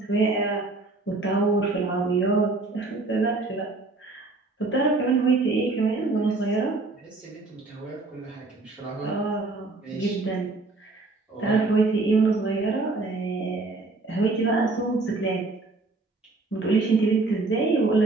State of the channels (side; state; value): left; quieter; 3.4 dB